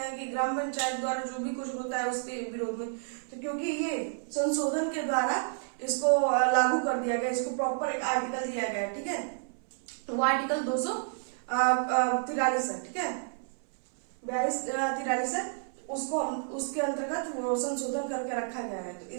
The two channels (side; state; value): left; silent; 57 dB below the other